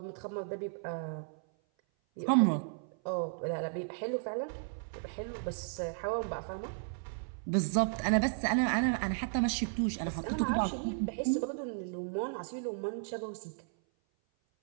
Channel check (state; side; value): silent; left; 55 dB below the other